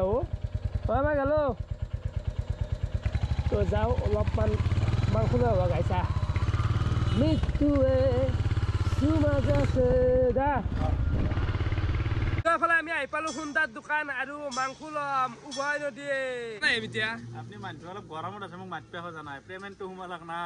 আহো হয় বাই গেলো তো যাও অলপমান মাংস লৈ আহো গাইছা মৃত্যুৱে সুমাজ আছে দা ফালে আমি আহি পালো সুন্দাৰ দোকান আৰু মাংস লম উভয় নদীয়ে নাই এতিয়া আপুনি মানুহ অলপ গৰমত আছে মোক মাতপে হৈ জানাই পেমেন্টটো হুমালাক না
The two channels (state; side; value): identical; both; correlation 1.00